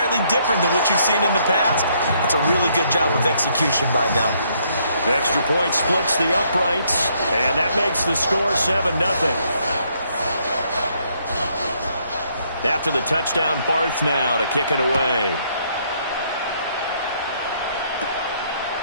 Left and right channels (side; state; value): both; inverted; correlation -0.70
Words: different than what you've seen in the past. It's a really good job of execution by them. The extra point splits the uprights, and that makes the score 7-0. After the touchdown, Barth now to kick it away.